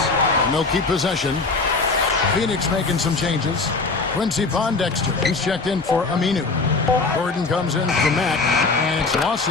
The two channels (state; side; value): quieter; right; 3.9 dB